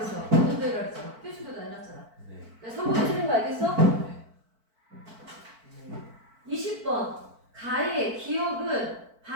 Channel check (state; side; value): late; left; 4.5 ms